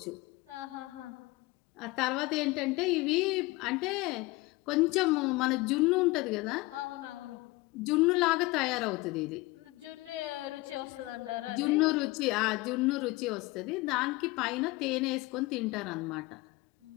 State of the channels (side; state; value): right; quieter; 21.8 dB